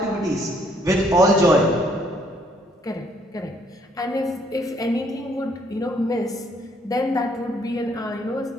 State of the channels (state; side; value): normal; both; correlation 0.66